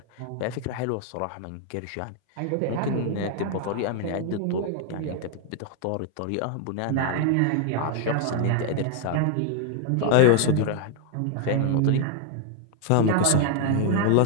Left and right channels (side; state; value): both; different; correlation 0.00